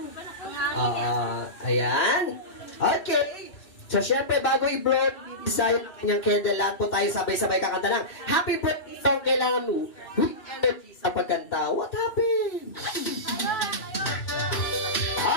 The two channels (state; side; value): late; right; 2.6 ms